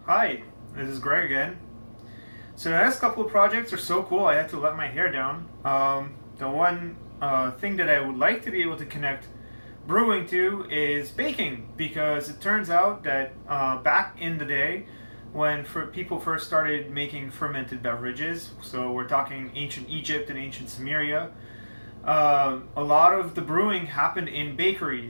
Hi, this is Greg again. So the next couple of projects are so cool I had to let my hair down. The one thing that I would like to be able to connect brewing to is baking, because it turns out that back in the day when people first started making fermented beverages, so we're talking ancient Egypt and ancient Sumeria, a lot of the brewing happened in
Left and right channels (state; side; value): inverted; both; correlation -1.00